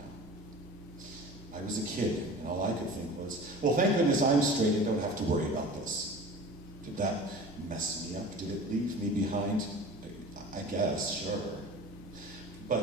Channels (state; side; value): normal; both; correlation 0.39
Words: I was a kid, and all I could think was, well, thank goodness I'm straight and don't have to worry about this. Did that mess me up? Did it leave me behind? I guess, sure.